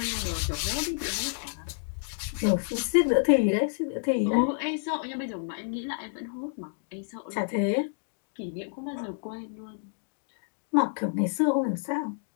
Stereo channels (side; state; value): right; silent; digital silence